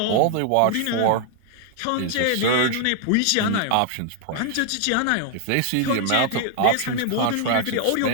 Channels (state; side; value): different; both; correlation 0.00